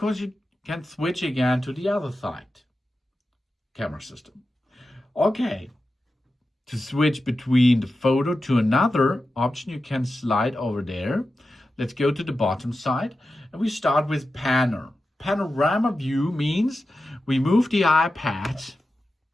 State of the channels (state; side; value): normal; both; correlation 0.92